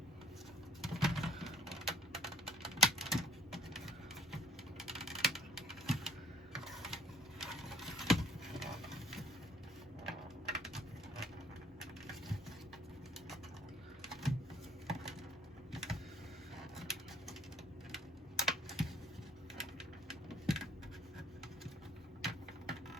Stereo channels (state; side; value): normal; both; correlation 0.59